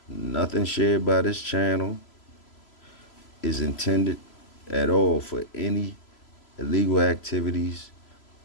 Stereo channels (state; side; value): late; right; 3.0 ms